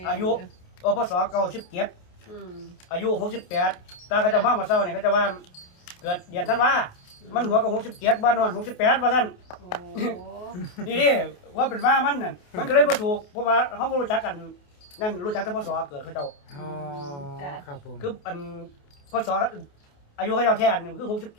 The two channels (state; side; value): late; right; 28 ms